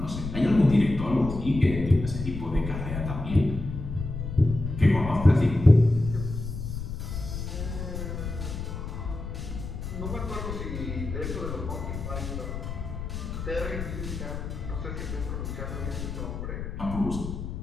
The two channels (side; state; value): left; noise; rumble, 6 dB below the sound